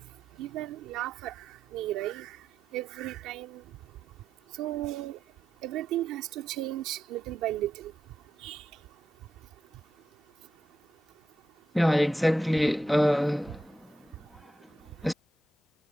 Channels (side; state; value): both; normal; correlation 0.86